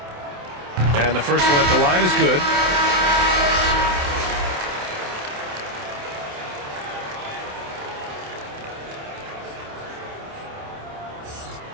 And the first one at the line is good.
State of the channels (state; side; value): late; left; 27 ms